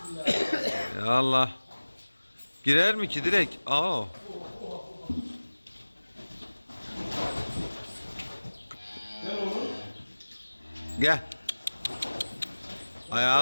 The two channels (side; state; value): both; inverted; correlation -1.00